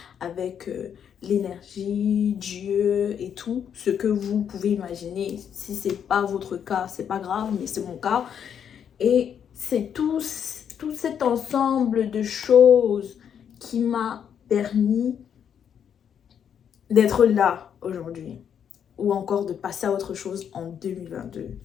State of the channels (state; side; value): quieter; right; 8.3 dB